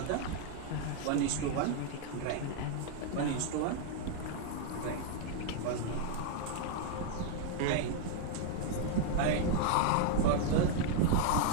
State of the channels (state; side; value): different; both; correlation 0.00